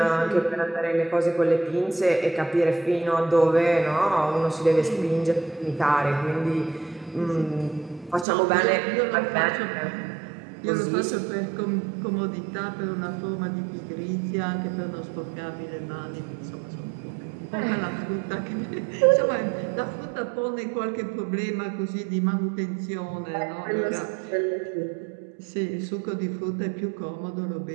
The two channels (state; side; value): drops out; left; at 8.2 s